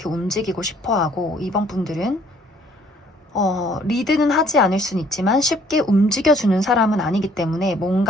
움직이고 싶어 하고 이번 분들은 리드는 하지 않을 수는 있지만 쉽게 움직여주는 사람은 아니기 때문에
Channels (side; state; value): both; normal; correlation 0.60